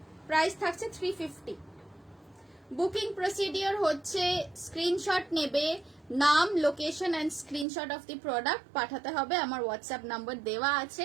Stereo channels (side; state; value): left; drops out; at 7.7 s